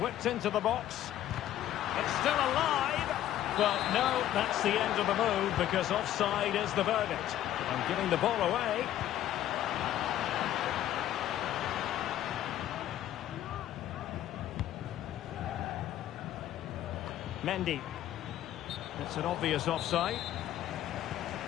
whipped into the box. It's still alive. Well, no, that's the end of the move because offside is the verdict. And giving the ball away. Mendy. It's an obvious offside.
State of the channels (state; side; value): quieter; right; 12.4 dB